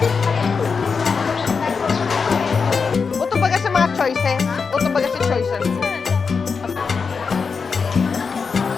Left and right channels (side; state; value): right; quieter; 5.3 dB